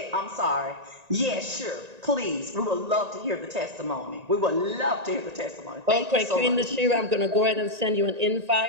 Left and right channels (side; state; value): left; late; 1.9 ms